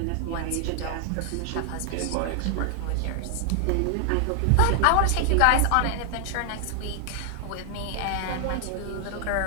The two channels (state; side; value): different; both; correlation 0.00